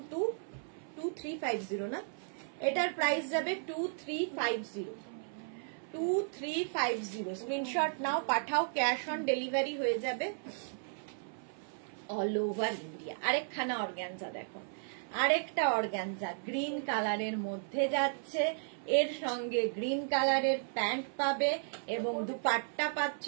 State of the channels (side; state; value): left; silent; 55 dB below the other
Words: না, এটার প্রাইস যাবে 2350, 2350। স্ক্রিনশট নাও, পাঠাও, ক্যাশ অন ডেলিভারি হয়ে যাবে অল ওভার ইন্ডিয়া। আরেকখানা অর্গানজা দেখো, আরেকটা অর্গানজা গ্রিন কালারের মধ্যে যাচ্ছে, এর সঙ্গে গ্রিন কালারের প্যান্ট পাবে এবং দুপাট্টা পাচ্ছ